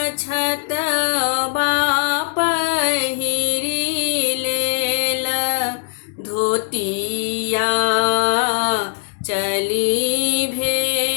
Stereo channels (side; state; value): right; silent; 66 dB below the other